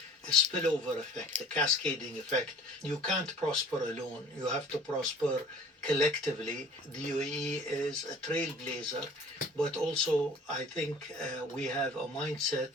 a spillover effect, a cascading effect. You can't prosper alone. You have to prosper collectively. The UAE is a trailblazer, but also I think we have a mindset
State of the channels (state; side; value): normal; both; correlation 0.48